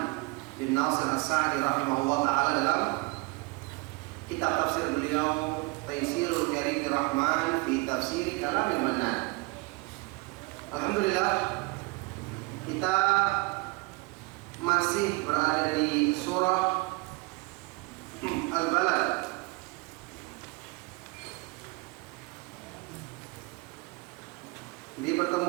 bin Nasir As-Sa'di rahimahullah ta'ala dalam kitab tafsir beliau Taisirul Karimir Rahman fi Tafsir Kalamil Mannan. Alhamdulillah, kita masih berada di surah Al-Balad. Di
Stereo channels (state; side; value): quieter; left; 26.1 dB